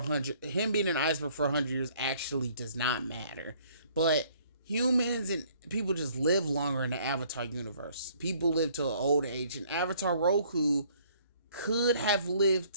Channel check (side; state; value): both; inverted; correlation -0.60